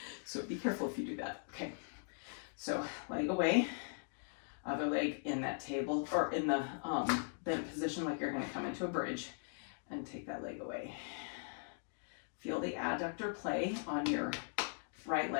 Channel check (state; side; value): silent; right; digital silence